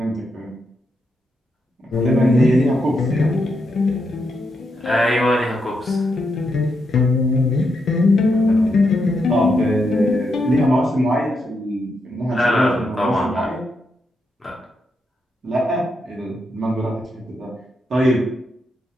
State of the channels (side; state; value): both; normal; correlation 0.82